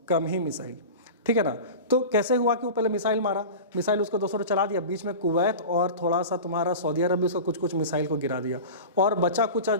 कम ही मिसाइल, ठीक है ना। तो कैसे हुआ कि वो पहले मिसाइल मारा, मिसाइल उसको 200 चला दिया, बीच में कुवैत और थोड़ा सा तुम्हारा सऊदी अरब भी उसको कुछ कुछ मिसाइल को गिरा दिया, और बचा कुछ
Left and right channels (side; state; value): both; inverted; correlation -0.31